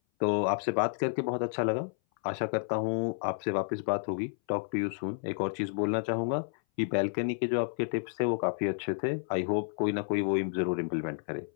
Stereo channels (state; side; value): silent; right; 57 dB below the other